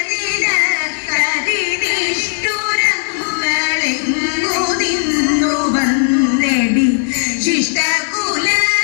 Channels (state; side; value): silent; right; 66 dB below the other